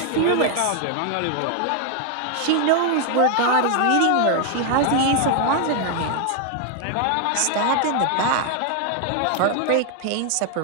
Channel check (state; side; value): different; both; correlation 0.01